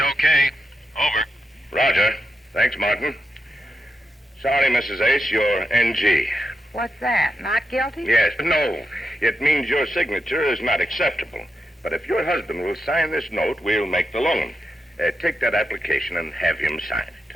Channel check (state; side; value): normal; both; correlation 0.87